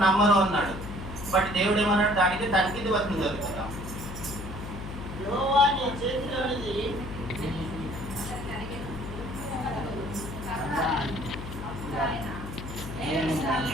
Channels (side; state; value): left; noise; hum, 9 dB below the sound